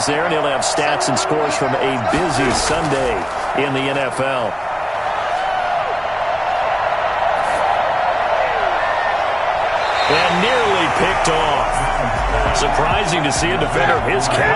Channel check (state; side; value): identical; both; correlation 1.00